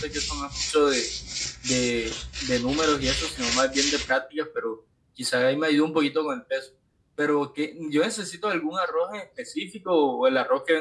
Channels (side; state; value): both; identical; correlation 1.00